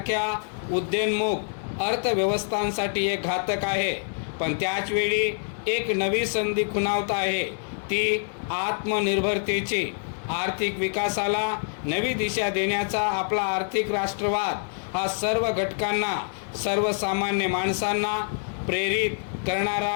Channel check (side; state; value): right; silent; digital silence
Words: उद्योन्मुख अर्थव्यवस्थांसाठी एक घातक आहे। पण त्याचवेळी एक नवी संधी खुणावत आहे, ती आत्मनिर्भरतेची। आर्थिक विकासाला नवी दिशा देण्याचा आपला आर्थिक राष्ट्रवाद हा सर्व घटकांना, सर्वसामान्य माणसांना प्रेरित करणारा